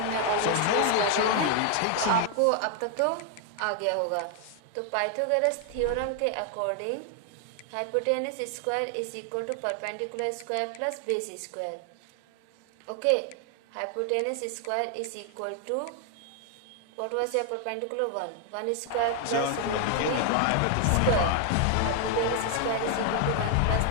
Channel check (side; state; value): both; different; correlation 0.00